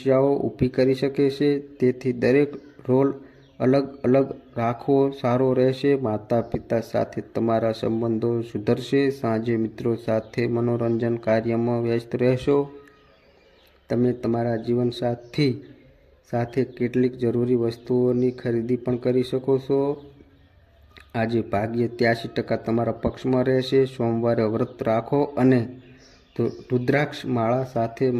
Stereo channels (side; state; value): both; identical; correlation 1.00